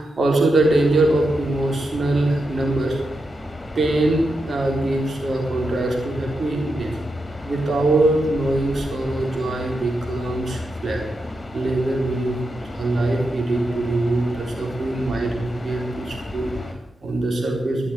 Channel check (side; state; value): both; normal; correlation 0.86